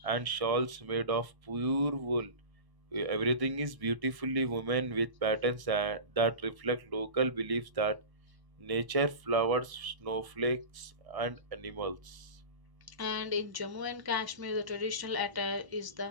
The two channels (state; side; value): late; left; 1.0 ms